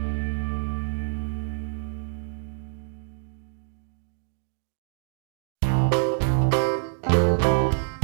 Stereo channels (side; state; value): left; silent; digital silence